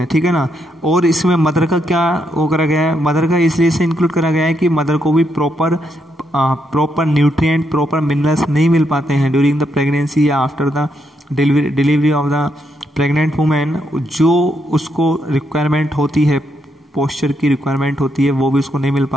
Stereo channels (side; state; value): both; normal; correlation 0.78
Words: ठीक है ना। और इसमें मदर का क्या वो करा गया है, मदर का इसलिए से इंक्लूड करा गया है कि मदर को भी प्रॉपर न्यूट्रिएंट, प्रॉपर मिनरल्स नहीं मिल पाते हैं ड्यूरिंग द प्रेगनेंसी या after the delivery of the pregnant women. जो उसको रिक्वायरमेंट होती है, पोस्चर की रिक्वायरमेंट होती है, वो भी उसको नहीं मिल